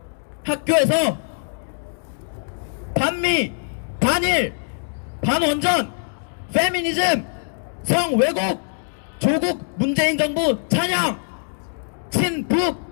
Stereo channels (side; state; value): right; silent; digital silence